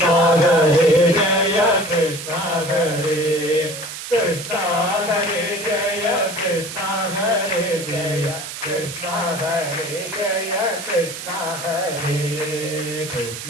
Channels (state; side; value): noise; right; hiss, 9 dB below the sound